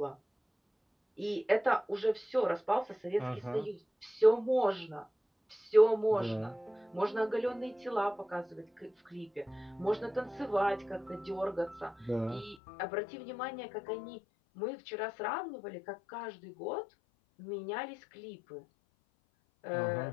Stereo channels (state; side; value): drops out; right; at 12.6 s